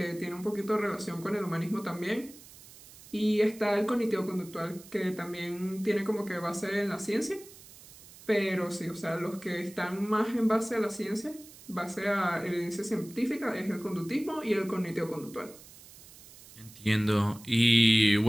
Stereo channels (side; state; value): right; noise; hiss, 20 dB below the sound